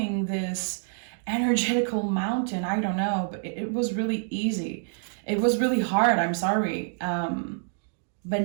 this energetical mountain. I don't know, but it was really easy. It was really hard, I'm sorry. But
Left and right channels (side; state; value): left; silent; 60 dB below the other